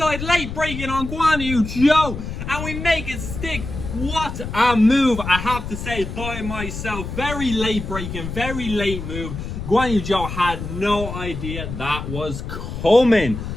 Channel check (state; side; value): noise; left; rumble, 7 dB below the sound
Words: late braking on Guan Yu Zhou, and we make it stick. What a move, I have to say, by myself. Very late braking, very late move. Guan Yu Zhou had no idea that was coming.